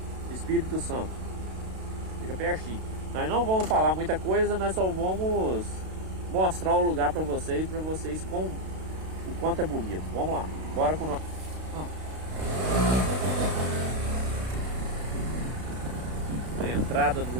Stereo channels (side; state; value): left; late; 32 ms